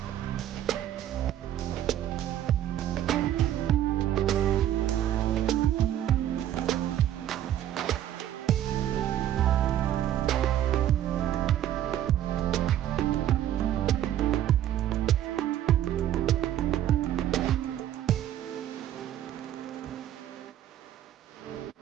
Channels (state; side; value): quieter; left; 11.5 dB